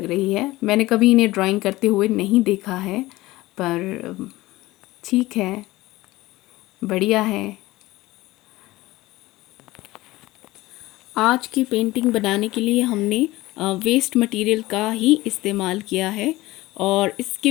रही है। मैंने कभी इन्हें ड्राइंग करते हुए नहीं देखा है, पर ठीक है, बढ़िया है। आज की पेंटिंग बनाने के लिए हमने वेस्ट मटेरियल का ही इस्तेमाल किया है और इसके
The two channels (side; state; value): right; quieter; 18.7 dB